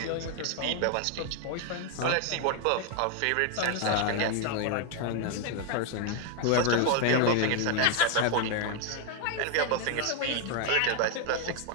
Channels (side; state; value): both; different; correlation 0.01